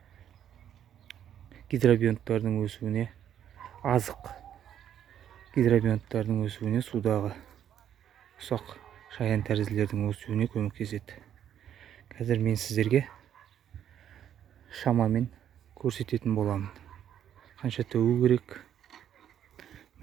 гидробионттардың өсуіне, азық гидробионттардың өсуіне, судағы ұсақ шаян тәрізділердің өсуіне көмектеседі. Қазір мен сіздерге шамамен көрсететін боламын. Қанша төгу керек.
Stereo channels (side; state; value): left; quieter; 9.9 dB